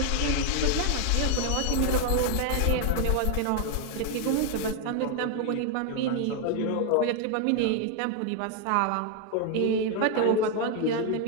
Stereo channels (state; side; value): different; both; correlation 0.01